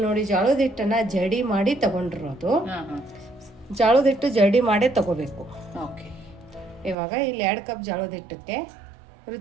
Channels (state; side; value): drops out; left; at 7.0 s